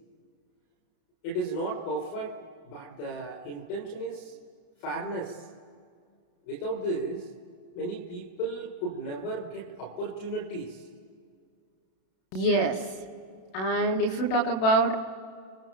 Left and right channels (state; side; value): late; right; 32 ms